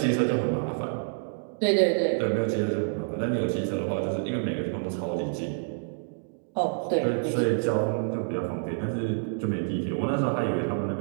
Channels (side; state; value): left; silent; digital silence